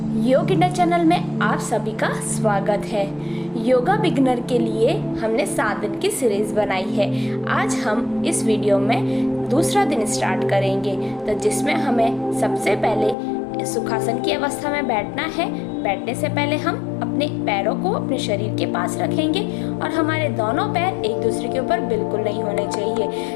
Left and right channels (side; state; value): right; drops out; at 13.2 s